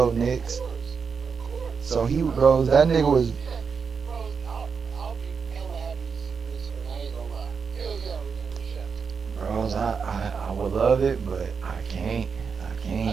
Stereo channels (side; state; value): left; quieter; 5.8 dB